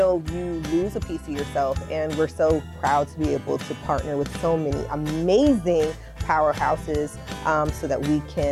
you lose a piece of yourself. And we're so proud to be able to partner with so many amazing powerhouses so that we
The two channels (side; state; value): both; identical; correlation 1.00